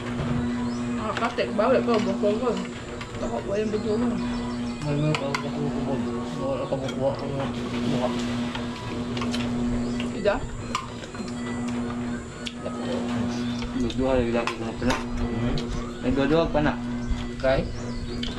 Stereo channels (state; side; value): identical; both; correlation 1.00